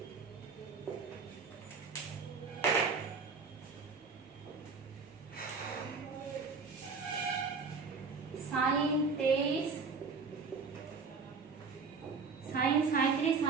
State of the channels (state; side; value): quieter; left; 4.8 dB